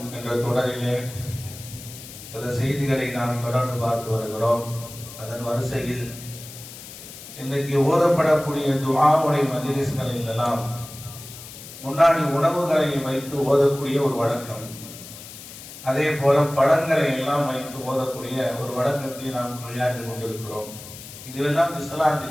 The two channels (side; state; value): left; noise; hiss, 14 dB below the sound